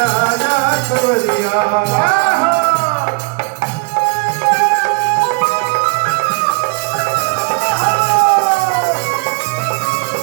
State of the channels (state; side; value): quieter; left; 31.2 dB